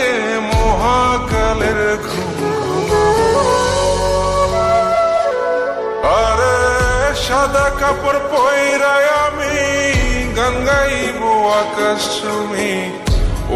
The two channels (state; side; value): identical; both; correlation 1.00